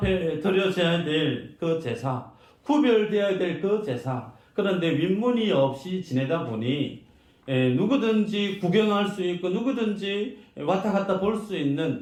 드려져야 될 그 제사, 구별되어야 될 그 제사, 그런데 윗문이 없이 지내다 보니 누구든지 구경할 수 있고 누구든지 왔다 갔다 볼 수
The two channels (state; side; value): identical; both; correlation 1.00